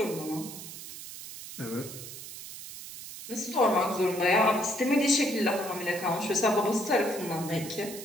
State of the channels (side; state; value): right; noise; hiss, 12 dB below the sound